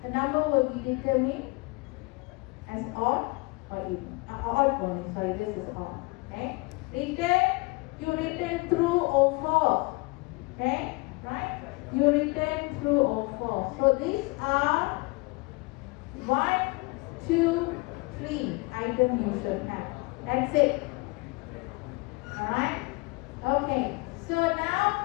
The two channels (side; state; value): right; quieter; 25.6 dB